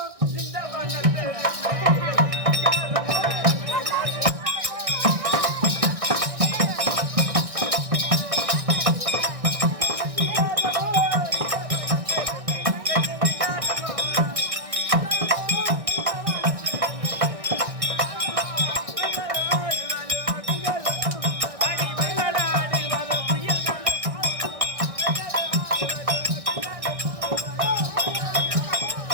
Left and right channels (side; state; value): left; late; 1.6 ms